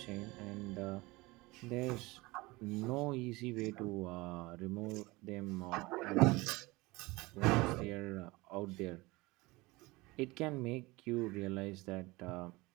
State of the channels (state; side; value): quieter; left; 22.4 dB